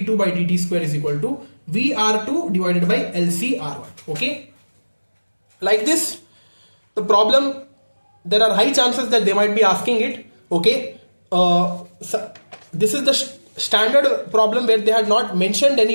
by dt square is equal to vr2 divided by lcr1. Okay, like this the problem, there are high chances that they might be asking it. Okay, so this is the standard problem where they had not mentioned any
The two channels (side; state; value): both; inverted; correlation -1.00